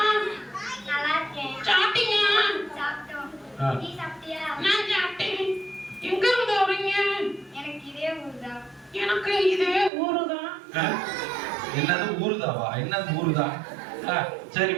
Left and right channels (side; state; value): left; drops out; at 9.9 s